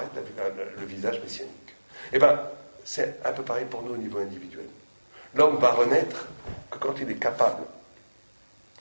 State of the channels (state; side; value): inverted; both; correlation -1.00